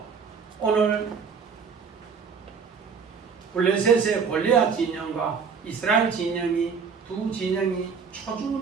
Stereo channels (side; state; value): left; quieter; 5.9 dB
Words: 오늘 블레셋의 골리앗 진영과 이스라엘 진영이 두 진영이